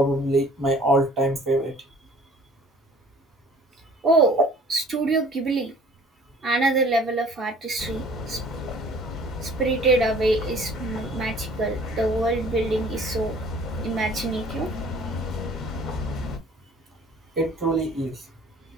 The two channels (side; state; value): both; normal; correlation 0.52